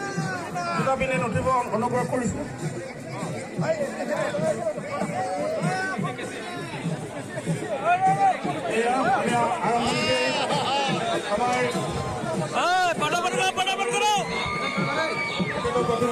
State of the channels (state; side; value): identical; both; correlation 1.00